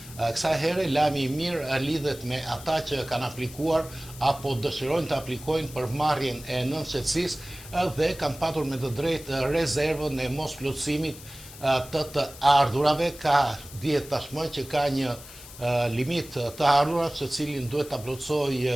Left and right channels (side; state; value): left; noise; hiss, 17 dB below the sound